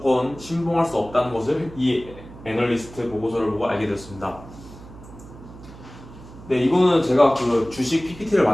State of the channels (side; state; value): right; noise; hum, 18 dB below the sound